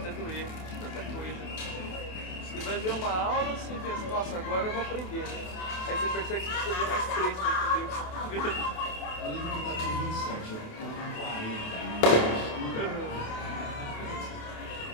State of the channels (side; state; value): right; late; 28 ms